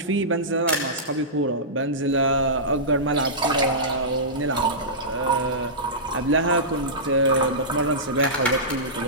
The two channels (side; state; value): both; normal; correlation -0.17